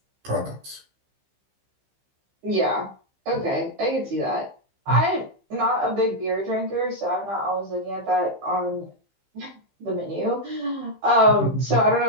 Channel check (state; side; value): late; left; 15 ms